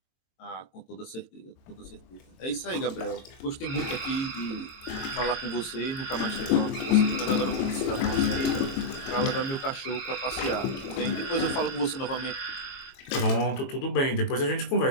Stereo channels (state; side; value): late; right; 22 ms